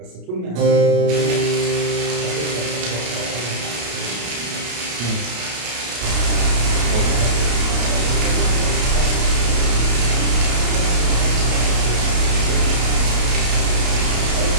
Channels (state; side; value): late; left; 33 ms